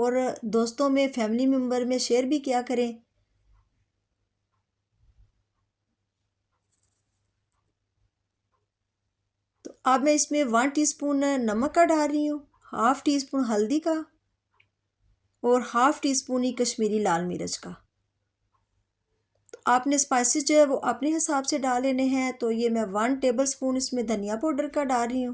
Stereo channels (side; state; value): both; identical; correlation 1.00